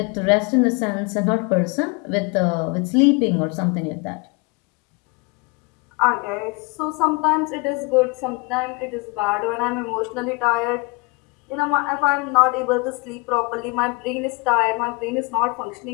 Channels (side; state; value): right; quieter; 27.9 dB